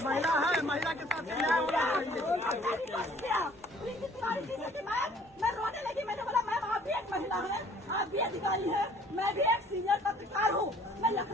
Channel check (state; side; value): normal; both; correlation 0.56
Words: महिला है, महिला के साथ न्याय होना चाहिए। मैं रोने लगी, मैंने बोला मैम आप भी एक महिला है, आप भी अधिकारी है, मैं भी एक सीनियर पत्रकार हूँ, मैं